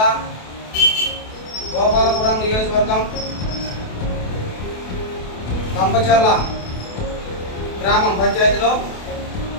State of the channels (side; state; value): right; late; 28 ms